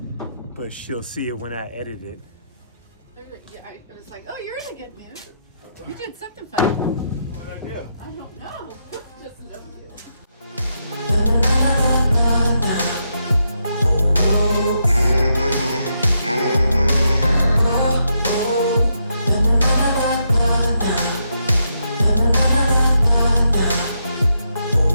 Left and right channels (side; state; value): both; inverted; correlation -0.81